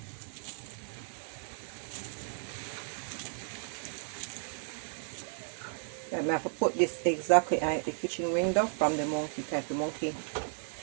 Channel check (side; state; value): left; silent; 55 dB below the other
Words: I have to put this exactly at the kitchen window from the monkey type. The monkey.